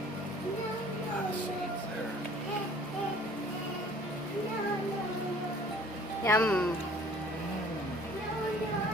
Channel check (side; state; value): both; normal; correlation 0.53